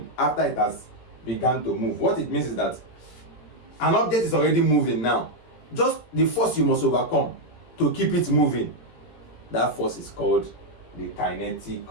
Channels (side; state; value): right; late; 17 ms